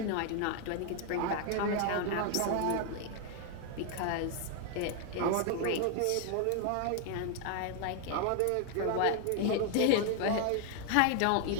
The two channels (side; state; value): both; different; correlation 0.00